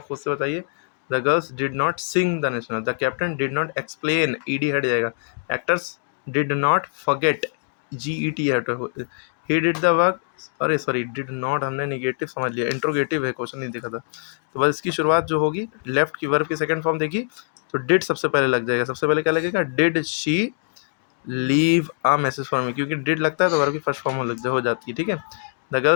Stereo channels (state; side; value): silent; right; 60 dB below the other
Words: खुद से बताइए। The girls did not sing the national, the captain did not explain, ED हट जाएगा, actors did not forget, GET हट, ही डिड द वर्क, अरे सॉरी डिड नॉट हमने निगेटिव समझ लिया, इंट्रोगेटिव है, क्वेश्चन नहीं देखा था, तो बस इसकी शुरुआत जो होगी लेफ्ट की वर्ब की सेकंड फॉर्म देखी तो डिड सबसे पहले लग जाएगा, सबसे पहले क्या लगेगा, did she leave a message for me, क्योंकि डिड लगता है तो वर्ब की फर्स्ट फॉर्म हो जाती है, ठीक है। द